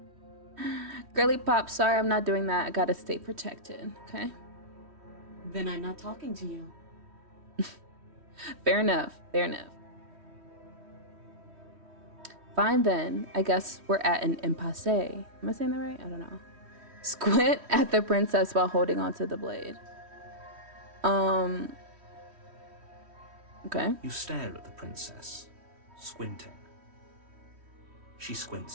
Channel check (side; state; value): left; late; 3.1 ms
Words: Girly pop, sorry, I'm not doing that. I gotta stay protected, okay? Then I'm not talking to you. Fair enough, fair enough. Fine then, I guess we're at an impasse. Am I saying that right? I don't know. Squint at the princess while holding onto the blade. Okay. You stare at the princess, squinting. She